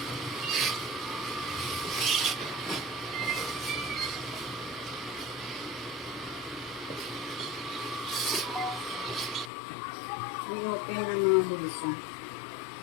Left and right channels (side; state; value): right; drops out; at 9.5 s